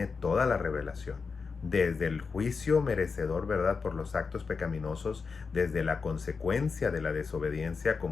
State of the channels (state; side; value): quieter; right; 5.0 dB